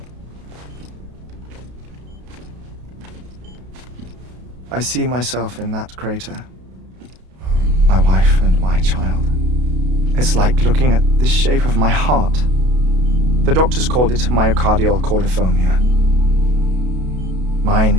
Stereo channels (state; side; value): late; left; 32 ms